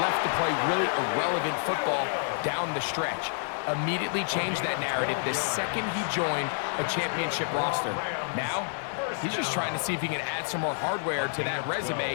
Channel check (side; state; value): right; silent; digital silence